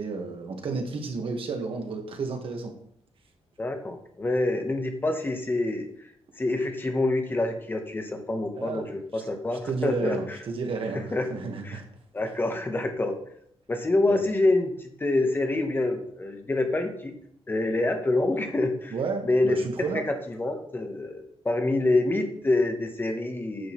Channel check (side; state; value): both; normal; correlation 0.86